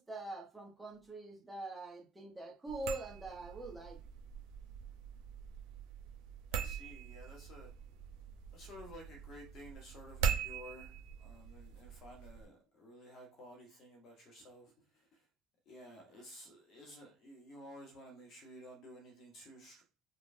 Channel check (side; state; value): left; quieter; 5.1 dB